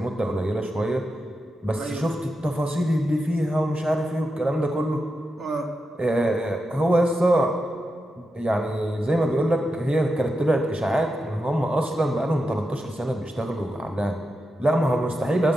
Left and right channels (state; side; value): normal; both; correlation 0.88